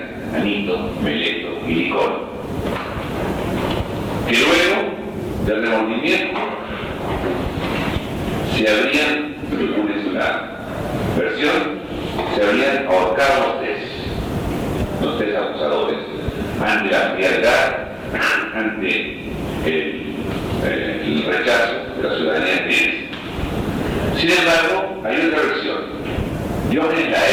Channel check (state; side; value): identical; both; correlation 1.00